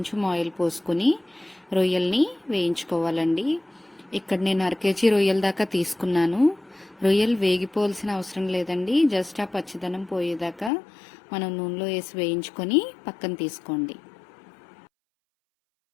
ఆయిల్ పోసుకొని రొయ్యల్ని వేయించుకోవాలండి. ఇక్కడ నేను 1/2 కేజీ రొయ్యల దాకా తీసుకున్నాను. రొయ్యలు వేగిపోవాల్సిన అవసరం లేదండి. జస్ట్ ఆ పచ్చిదనం పోయేదాకా మనం నూనెలో వేసి వేయించుకొని పక్కన తీసుకోండి.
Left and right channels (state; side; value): drops out; right; at 10.7 s